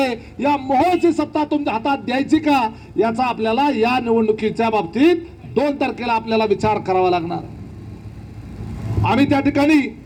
या मोहची सत्ता तुमच्या हातात द्यायची का, याचा आपल्याला या निवडणुकीच्या बाबतीत 2 तारखेला आपल्याला विचार करावा लागणार. आम्ही त्या ठिकाणी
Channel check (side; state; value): both; identical; correlation 1.00